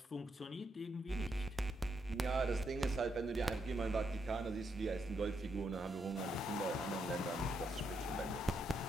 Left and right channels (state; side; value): normal; both; correlation 0.79